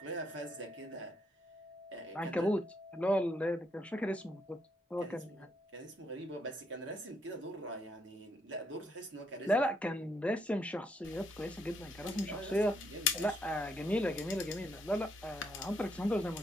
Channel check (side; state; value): both; normal; correlation 0.74